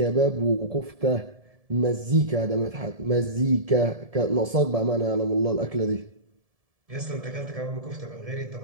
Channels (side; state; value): left; late; 1.7 ms